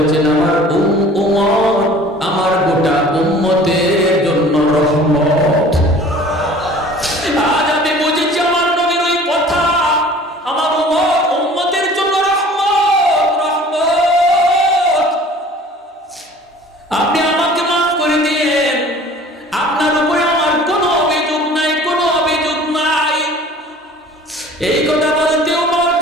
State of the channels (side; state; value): both; normal; correlation 0.48